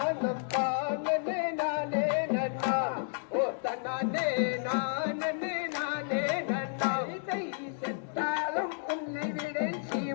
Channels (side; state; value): right; silent; digital silence